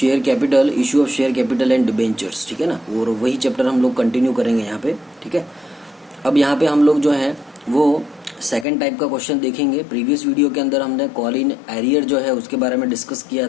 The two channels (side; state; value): right; drops out; at 8.7 s